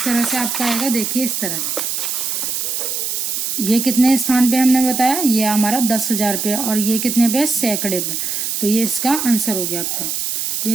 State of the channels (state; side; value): noise; right; hiss, 2 dB below the sound